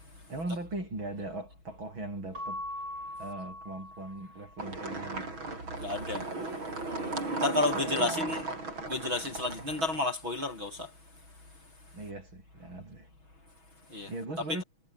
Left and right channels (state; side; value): late; left; 6.2 ms